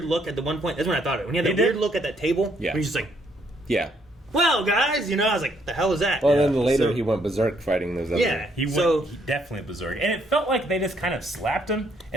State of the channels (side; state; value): both; normal; correlation 0.70